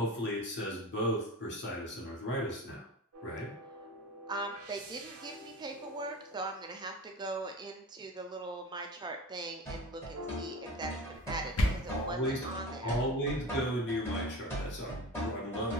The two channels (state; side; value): normal; both; correlation 0.34